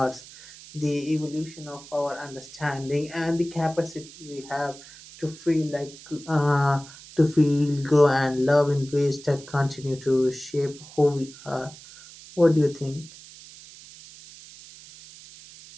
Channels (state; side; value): noise; right; hiss, 18 dB below the sound